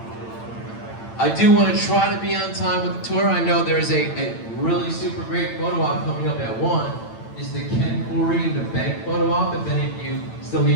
I do want to try to be on time with the tour. I know there's a really super great photo op coming up at 1. Is the Ken Corey and the bank photo op. If any of you still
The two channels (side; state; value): right; late; 8.9 ms